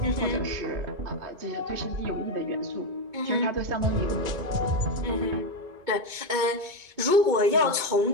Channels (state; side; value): late; left; 2.2 ms